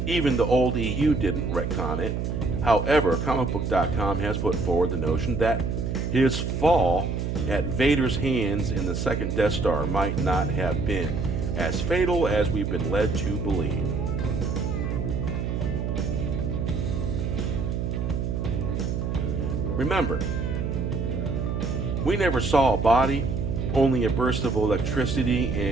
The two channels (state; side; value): noise; right; hum, 2 dB below the sound